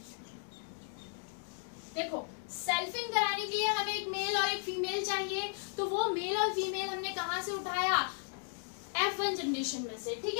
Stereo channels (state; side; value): silent; right; 54 dB below the other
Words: देखो, सेल्फिंग कराने के लिए हमें एक मेल और एक फीमेल चाहिए, तो वो मेल और फीमेल हमने कहां से उठाया, F1 जनरेशन में से, ठीक